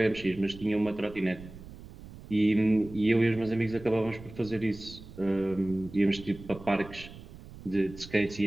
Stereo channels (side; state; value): right; noise; rumble, 16 dB below the sound